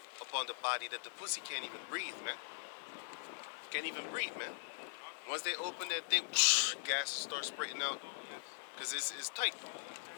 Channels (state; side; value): silent; right; 50 dB below the other